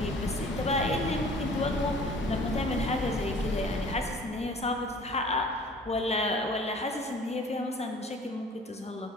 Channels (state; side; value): normal; both; correlation 0.49